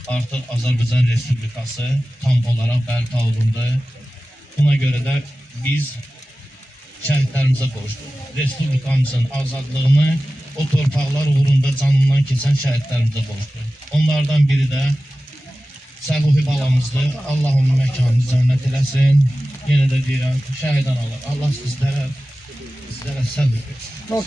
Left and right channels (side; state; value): both; normal; correlation 0.95